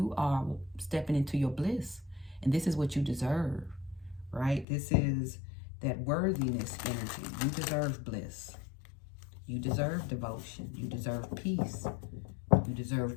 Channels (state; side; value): drops out; right; at 4.7 s